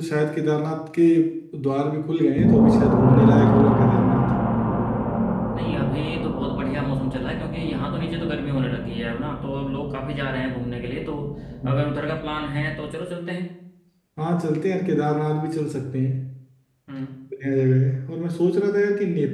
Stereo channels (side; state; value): both; identical; correlation 1.00